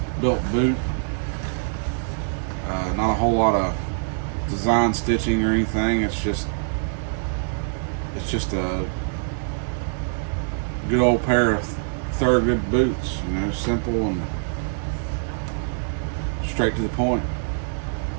built boot. Not a whole lot of design stitching or anything. It's just a good old pair of Thorogood boots, you know, simple and straight to the point.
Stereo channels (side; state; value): left; silent; digital silence